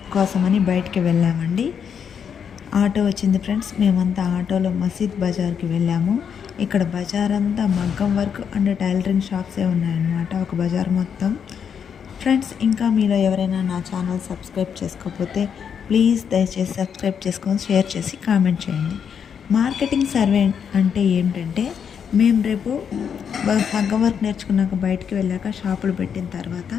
కోసమని బయటికి వెళ్ళామండి. ఆటో వచ్చింది ఫ్రెండ్స్. మేమంతా ఆటోలో మసీద్ బజార్కి వెళ్ళాము. ఇక్కడ బజార్ అంతా మగ్గం వర్క్ అండ్ టైలరింగ్ షాప్సే ఉన్నాయన్నమాట, ఒక బజార్ మొత్తం. ఫ్రెండ్స్, ఇంకా మీలో ఎవరైనా నా ఛానల్ సబ్స్క్రైబ్ చేసుకోకపోతే ప్లీజ్ దయచేసి సబ్స్క్రైబ్ చేసుకొని షేర్ చేసి కామెంట్ చేయండి. మార్కెటింగ్ సర్వే అంటే ఏంటంటే, మేము రేపు మగ్గం వర్క్ నేర్చుకున్నాక బయటికి వెళ్ళాక షాపులు పెట్టిన తర్వాత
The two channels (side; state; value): right; quieter; 7.4 dB